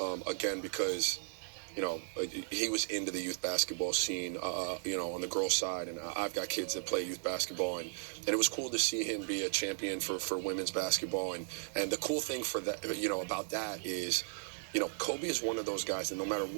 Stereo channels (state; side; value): silent; left; digital silence